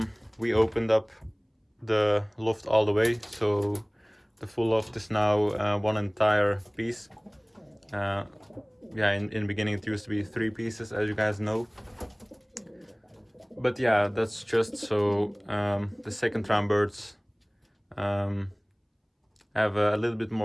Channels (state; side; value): identical; both; correlation 1.00